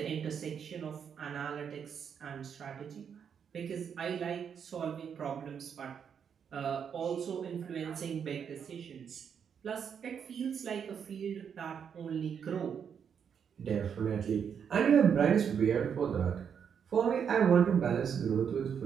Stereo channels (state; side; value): quieter; left; 7.4 dB